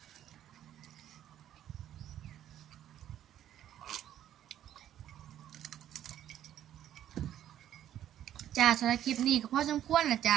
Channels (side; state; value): left; quieter; 11.3 dB